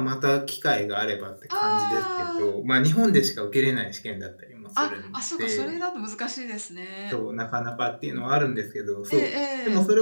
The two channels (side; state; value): both; inverted; correlation -1.00